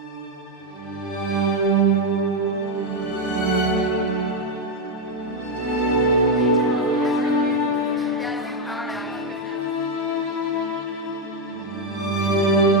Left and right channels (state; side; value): normal; both; correlation 0.05